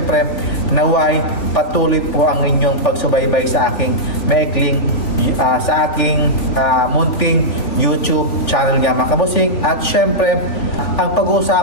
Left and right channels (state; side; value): late; right; 3.4 ms